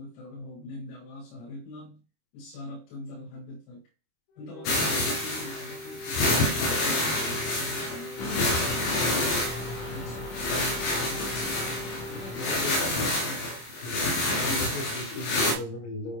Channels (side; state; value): right; late; 26 ms